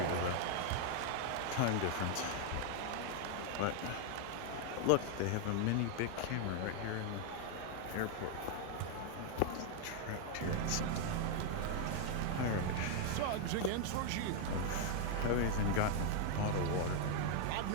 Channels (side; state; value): both; different; correlation 0.00